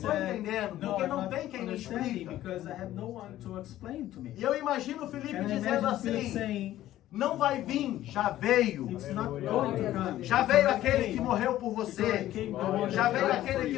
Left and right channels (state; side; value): quieter; right; 13.8 dB